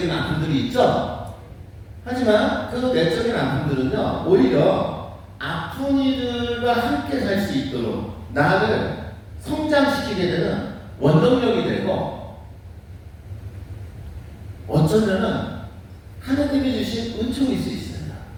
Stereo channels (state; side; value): identical; both; correlation 1.00